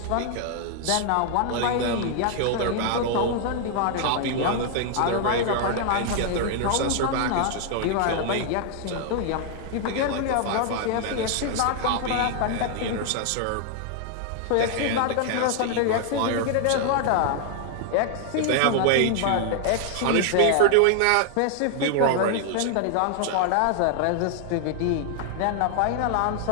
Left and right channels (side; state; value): both; different; correlation 0.00